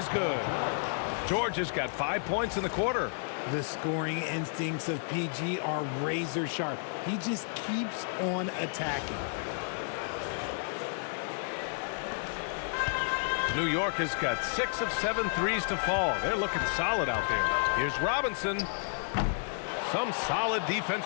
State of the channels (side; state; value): right; silent; 57 dB below the other